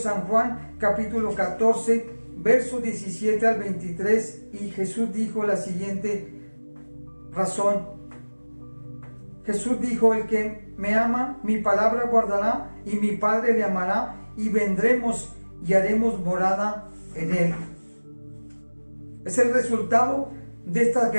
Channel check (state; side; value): inverted; both; correlation -1.00